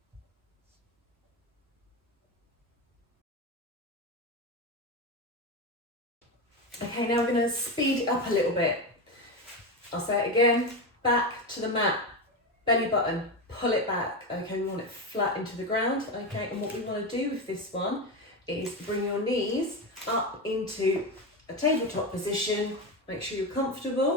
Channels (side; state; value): both; normal; correlation 0.16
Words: Okay, now we're going to speed it up a little bit. I'll say it again, back to the mat, belly button, pull it back. Okay, we want it flat into the ground. Okay, and what we want to do with this one is bring your knees up into a tabletop position. Make sure you're